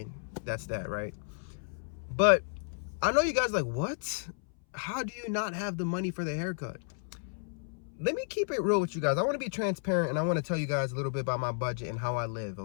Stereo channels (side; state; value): right; silent; 56 dB below the other